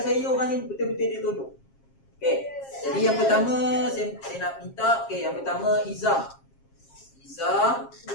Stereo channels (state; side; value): late; right; 7.4 ms